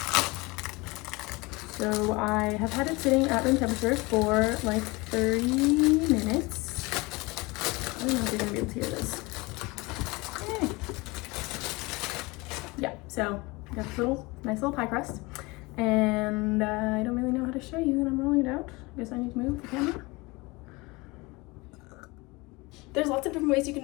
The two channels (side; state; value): right; quieter; 24.2 dB